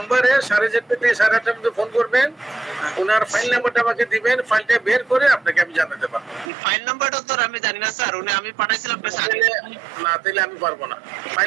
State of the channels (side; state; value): left; drops out; at 6.5 s